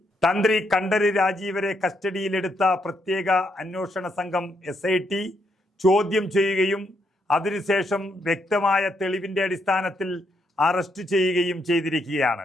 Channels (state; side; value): normal; both; correlation 0.77